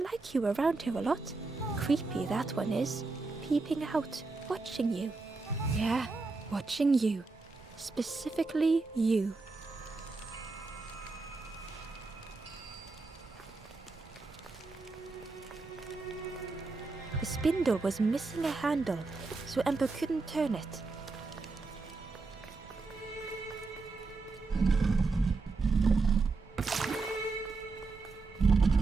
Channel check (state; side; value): quieter; left; 3.9 dB